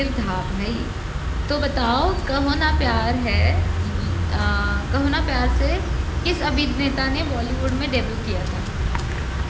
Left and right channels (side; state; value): both; identical; correlation 1.00